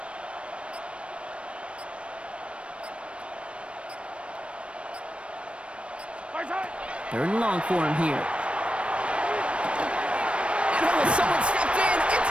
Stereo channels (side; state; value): left; late; 0.060 ms